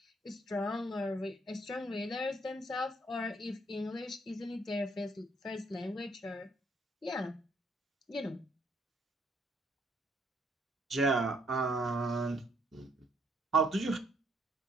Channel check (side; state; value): both; normal; correlation 0.69